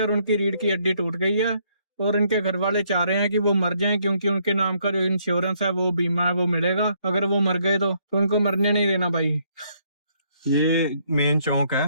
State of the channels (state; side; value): inverted; both; correlation -0.70